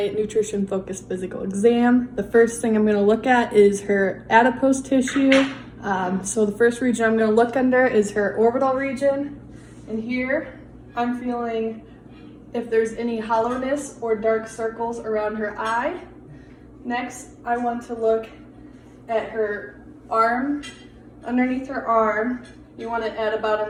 nutrition focused physical exam. The first thing I'm going to look at is her adipose tissue. So the first region I'm going to look under is her orbital region. And here I'm feeling if there's any hollowness or dark circles around her eye. Next, I want to look at her arm. Underneath her arm, you want to add about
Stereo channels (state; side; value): identical; both; correlation 1.00